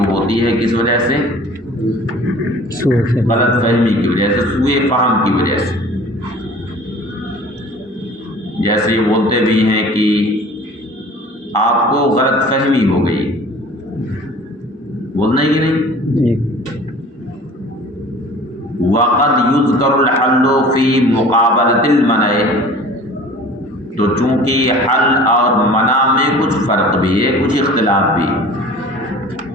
ہوتی ہے کس وجہ سے، غلط فہمی کی وجہ سے، سوء فہم کی وجہ سے۔ جیسے یہ بولتے بھی ہیں کہ آپ کو غلط فہمی ہو گئی، بولنا ہی نہیں۔ وقد یذکر الحل فی مقابلۃ المنع، تو چونکہ حل اور منع میں کچھ فرق بھی ہے، کچھ اختلاف بھی،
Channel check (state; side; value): normal; both; correlation 0.45